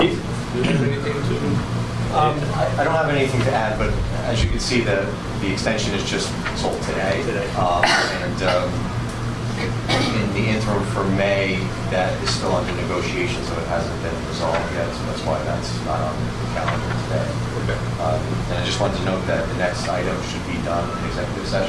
do you have anything to? I don't have anything to add, but as you can see, the extension is just sold today. In the interim for May, that is still under negotiation, so it hasn't been resolved yet, so that's why that's not on the calendar today. Okay. And I just wanted to note that the next item should be done in executive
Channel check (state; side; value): identical; both; correlation 1.00